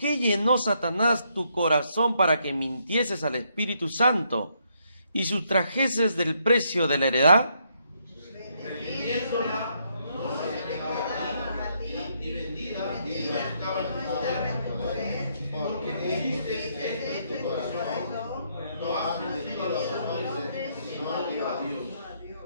llenó Satanás tu corazón para que mintieses al Espíritu Santo y sustrajeses del precio de la heredad?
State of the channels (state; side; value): inverted; both; correlation -0.74